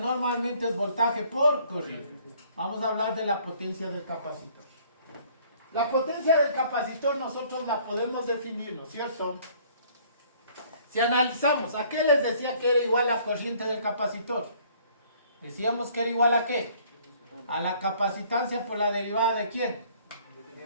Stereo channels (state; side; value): inverted; both; correlation -0.58